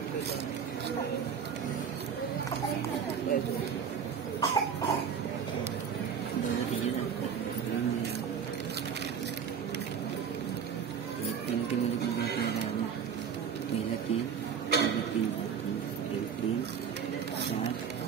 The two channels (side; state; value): left; quieter; 7.3 dB